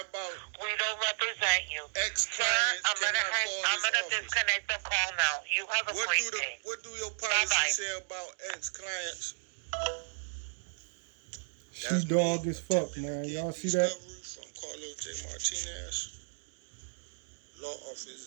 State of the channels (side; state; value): left; silent; digital silence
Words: about we don't represent you? ex-clients I'm gonna disconnect the call now. You have a great day. What do your policy Bye-bye. say about ex-clients? She dog as fuck, man. Y'all see that? From Carlos J. Martinez, law office